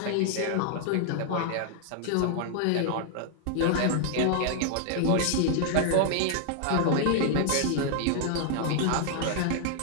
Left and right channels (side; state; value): both; different; correlation 0.00